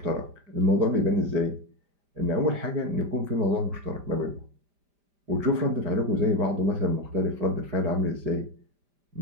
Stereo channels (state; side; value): late; left; 5.0 ms